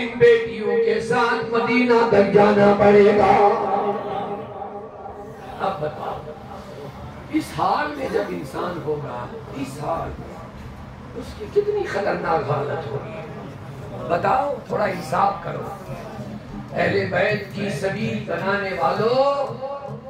بیٹیوں کے ساتھ مدینہ تک جانا پڑے گا۔ اب بتاؤ اس حال میں جب انسان ہوگا، اس حال میں اس کی کتنی خطرناک حالت ہوگی، بتاؤ، تھوڑا انصاف کرو۔ اہل بیت کی سبیل بنانے والوں،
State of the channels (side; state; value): both; identical; correlation 1.00